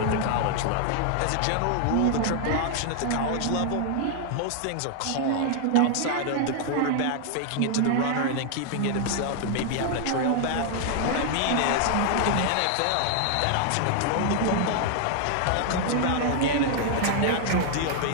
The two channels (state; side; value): different; both; correlation 0.00